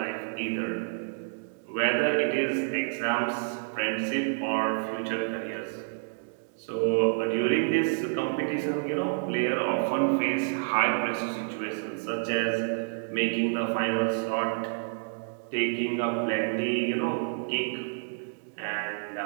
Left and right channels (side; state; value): left; silent; digital silence